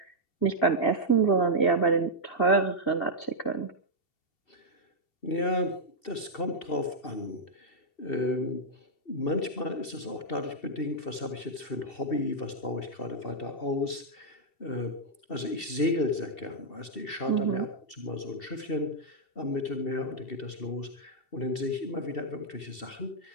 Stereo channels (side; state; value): right; late; 2.7 ms